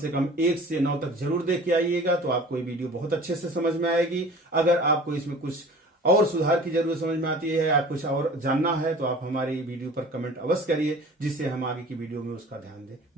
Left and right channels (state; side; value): normal; both; correlation 0.43